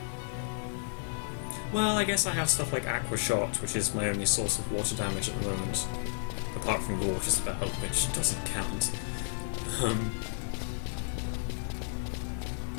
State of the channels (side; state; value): right; silent; 56 dB below the other